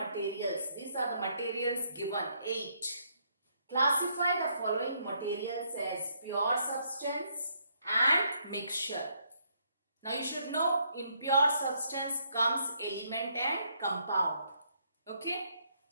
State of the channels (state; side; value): inverted; both; correlation -0.72